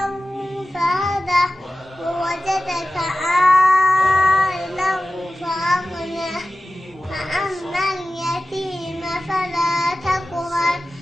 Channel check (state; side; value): normal; both; correlation 0.95